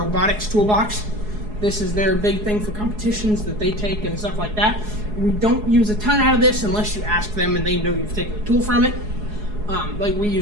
toolbox. This is their big thing for competitions that they take and stuff like that. We don't use a ton out of this unless you ask them and they know you've taken a tool from it. Like we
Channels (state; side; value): late; left; 4.7 ms